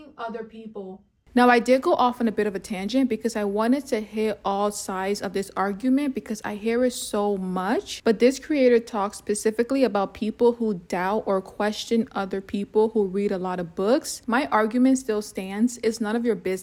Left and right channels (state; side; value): identical; both; correlation 1.00